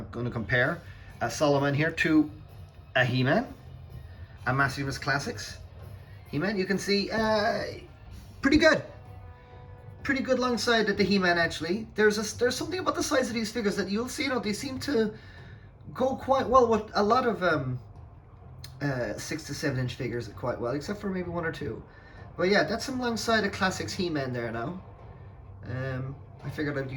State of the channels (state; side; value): identical; both; correlation 1.00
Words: going to compare Solomon here to a He-Man, a Maximus Classics He-Man. You can see pretty good alongside the He-Man. Actually, there's something about the size of these figures that you'll see. You know, they seem to go quite well with a lot of 6 to 7 inch figures quite well, except for maybe one or two. But yeah, that's alongside a Classics He-Man there now. I figured I'd